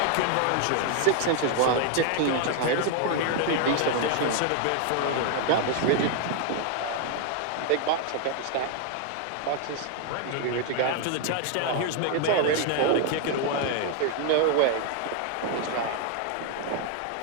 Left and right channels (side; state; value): both; different; correlation 0.00